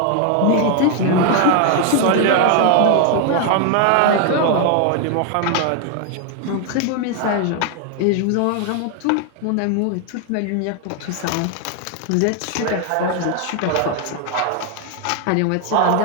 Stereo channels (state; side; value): different; both; correlation 0.00